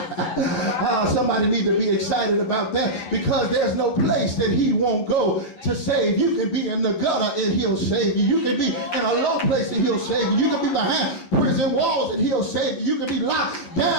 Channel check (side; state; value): right; late; 11 ms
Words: Somebody need to be excited about that, because there's no place that he won't go to save. You can be in the gutter and he'll save you. You can be in a low place and he'll save you. You can be behind prison walls and he'll save you. You can be locked